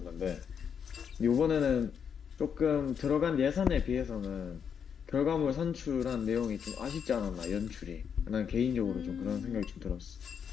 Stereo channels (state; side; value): quieter; right; 7.3 dB